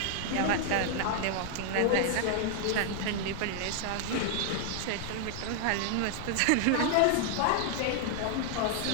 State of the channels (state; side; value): different; both; correlation 0.00